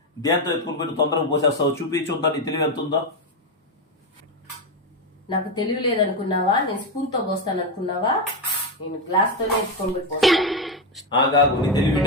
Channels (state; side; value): normal; both; correlation 0.09